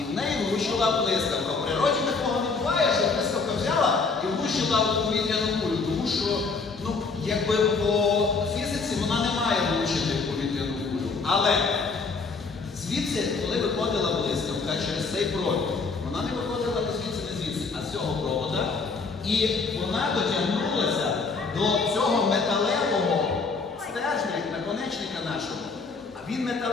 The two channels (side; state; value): right; quieter; 4.4 dB